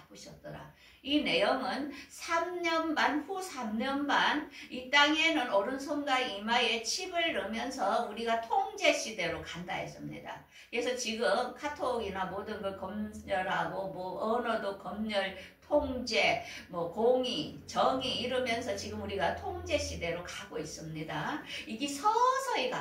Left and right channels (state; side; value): identical; both; correlation 1.00